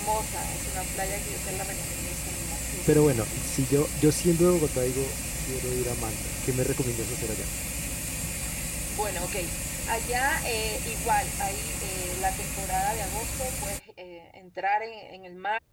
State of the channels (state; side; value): identical; both; correlation 1.00